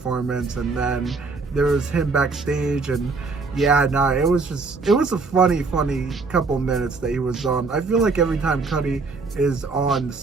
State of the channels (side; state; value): left; quieter; 4.2 dB